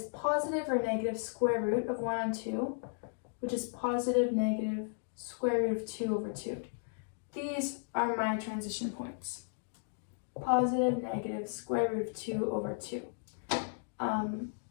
positive or negative square root of 1 on 2, which is positive negative square root of 2 over 2. These are my transition points. Positive, negative, square root of 2 over 2. And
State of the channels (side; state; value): right; silent; digital silence